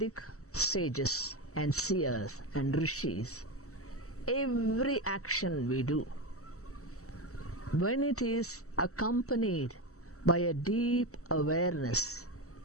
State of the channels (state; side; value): late; right; 0.64 ms